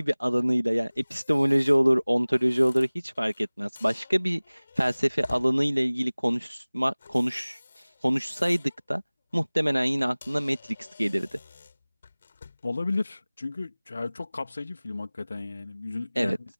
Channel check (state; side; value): inverted; both; correlation -1.00